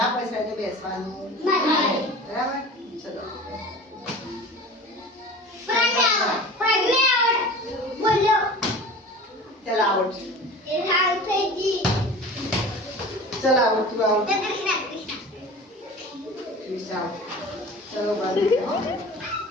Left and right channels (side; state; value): both; normal; correlation 0.38